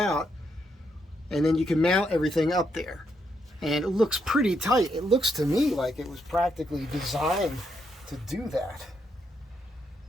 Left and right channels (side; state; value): both; normal; correlation 0.78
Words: and then you can mount everything up there. And it looks pretty tight. It looks to me like it was practically designed to do that.